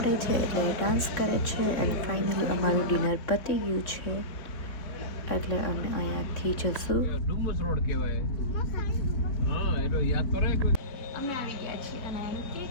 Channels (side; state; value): right; late; 3.6 ms